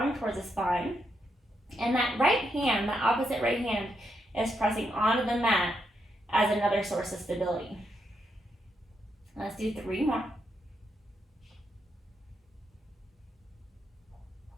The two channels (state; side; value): normal; both; correlation 0.80